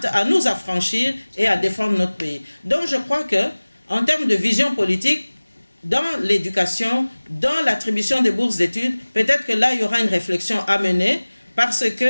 à nous affranchir et à défendre notre pays. Donc je crois que, en termes de vision politique, dans l'éducation, dans l'attribution des bourses d'études, peut-être que là, il y aura une réflexion à mener, parce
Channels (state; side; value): inverted; both; correlation -1.00